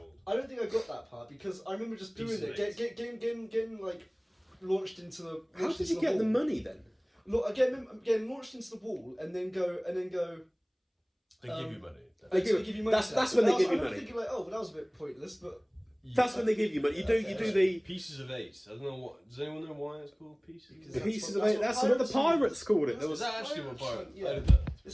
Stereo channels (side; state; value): both; identical; correlation 1.00